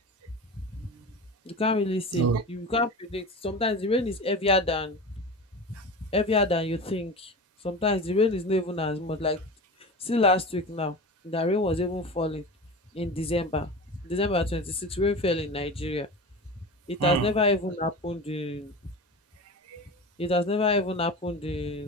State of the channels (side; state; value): both; normal; correlation 0.30